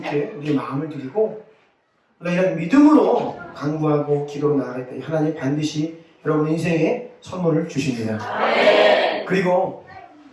우리의 마음을 드리고 우리가 이런 믿음으로 간구하고 기도로 나아갈 때 하나님 반드시 여러분 인생에 선물을 주십니다. 그리고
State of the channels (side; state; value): both; identical; correlation 1.00